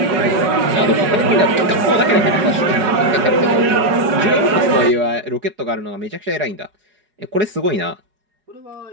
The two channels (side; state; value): left; late; 4.9 ms